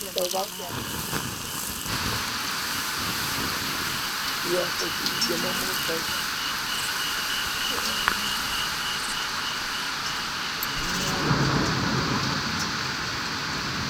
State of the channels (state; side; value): identical; both; correlation 1.00